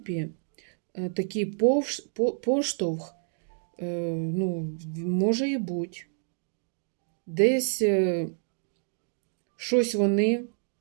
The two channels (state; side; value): silent; left; 59 dB below the other